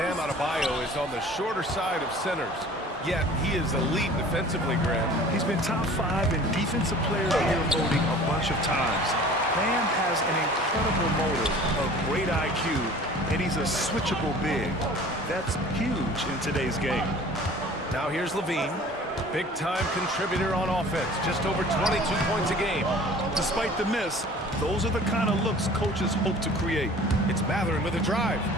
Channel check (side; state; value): both; normal; correlation 0.46